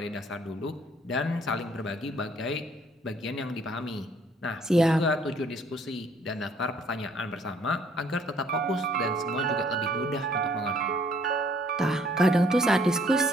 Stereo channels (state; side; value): normal; both; correlation 0.62